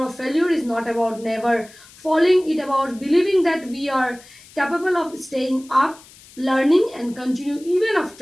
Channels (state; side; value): noise; left; hiss, 23 dB below the sound